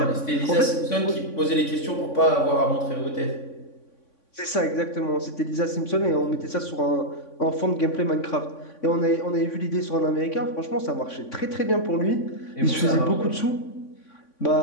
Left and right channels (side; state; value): right; late; 3.5 ms